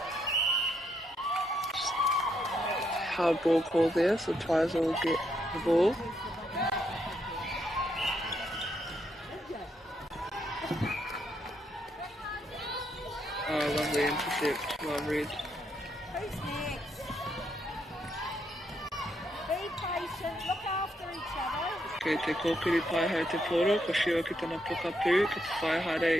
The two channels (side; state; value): both; normal; correlation 0.77